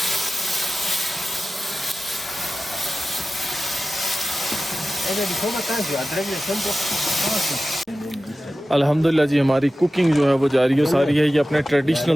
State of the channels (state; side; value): normal; both; correlation 0.95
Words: अल्हम्दुलिल्लाह जी, हमारी कुकिंग जो है वो जारी सारी है। ये अपने